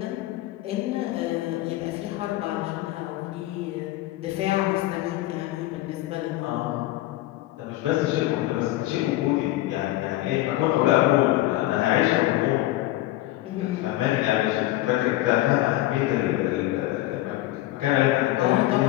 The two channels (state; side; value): quieter; right; 16.3 dB